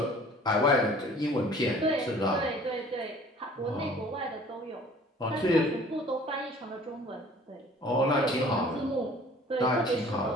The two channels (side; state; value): both; normal; correlation 0.50